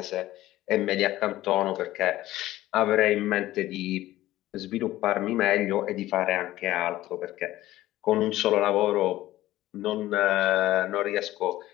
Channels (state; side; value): quieter; right; 15.6 dB